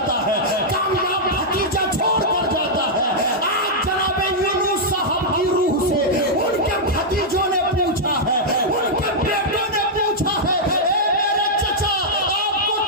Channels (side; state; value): both; normal; correlation -0.06